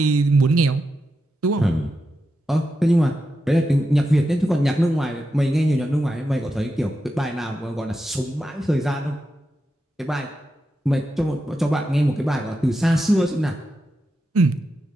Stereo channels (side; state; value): both; normal; correlation 0.88